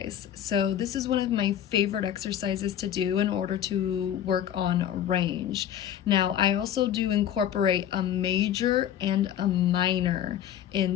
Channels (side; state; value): right; quieter; 10.4 dB